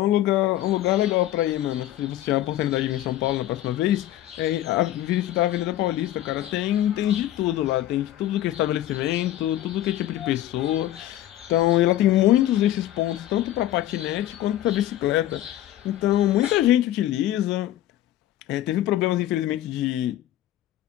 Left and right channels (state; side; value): quieter; right; 13.5 dB